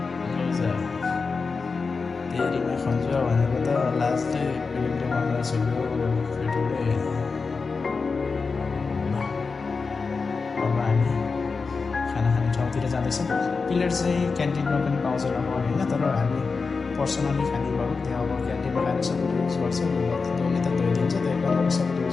धेरैमा खन्छ भनेको त लास्टै पेटले मर्दा छोड्यो पेटले। अब हामी खाना खाने ठाउँतिर जाँदैछौँ। प्लेट चाहिँ क्यान्टिनमा पनि पाउँछ नपाउने होइन, तर हामी पर्सनली खाने भयो। त्यहाँ अब क्यान्टिनमा खाने सबैले युज गर्छ, धोने त धोइदिन्छ। त्यही कारण सबैले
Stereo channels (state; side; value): quieter; right; 4.6 dB